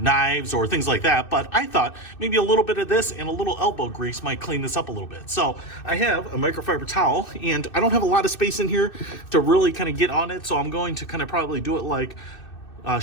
or things like that, but I thought maybe a little bit of this and a little elbow grease might clean this up a little bit. So I have a microfiber towel, and I don't have a lot of space in here to really kind of get on it, so I'm going to kind of probably do it like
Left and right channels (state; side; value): late; right; 2.6 ms